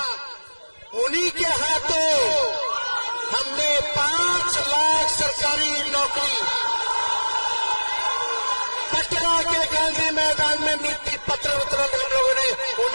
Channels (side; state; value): both; inverted; correlation -1.00